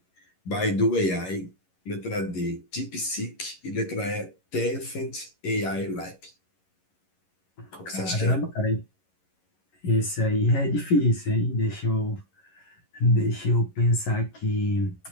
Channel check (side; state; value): right; late; 11 ms